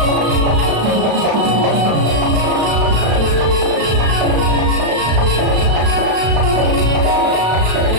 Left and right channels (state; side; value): late; left; 35 ms